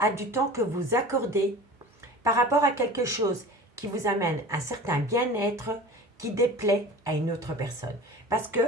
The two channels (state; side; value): normal; both; correlation 0.39